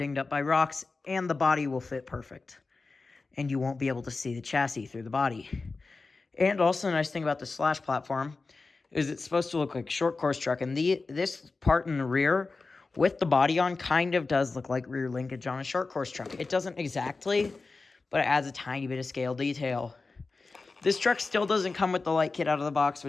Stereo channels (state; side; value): quieter; right; 3.9 dB